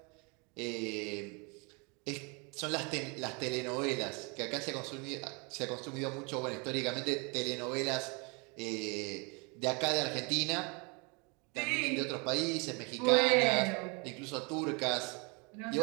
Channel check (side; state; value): left; quieter; 31.5 dB